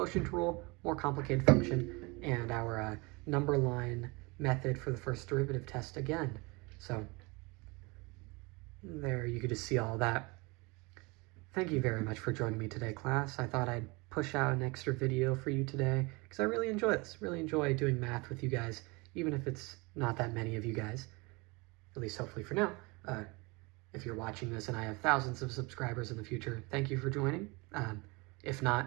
rule, more complicated function, and our number line method for the first derivative test again. So, there you could just see all that. Thank you very much for joining me today, class. I thought I'd push out an extra video for you today because I really enjoy this. Really enjoy doing math with you guys, even if it's not that many of you guys, at least hopefully for now. If you're watching this and I have thousands of subscribers in the future, thank you for joining. If not,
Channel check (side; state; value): left; quieter; 26.6 dB